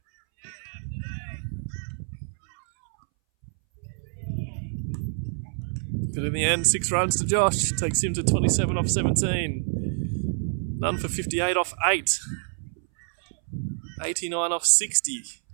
But in the end, 6 runs to Josh. Takes him to 27 off 17. None for 58 off 8. 89 off 60.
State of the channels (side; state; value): left; silent; 60 dB below the other